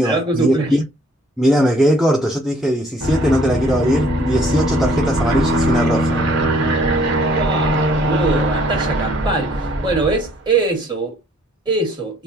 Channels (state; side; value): normal; both; correlation 0.60